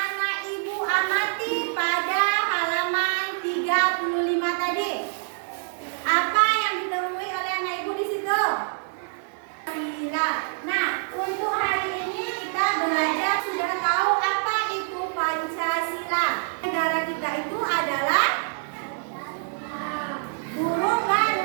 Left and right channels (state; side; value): silent; left; digital silence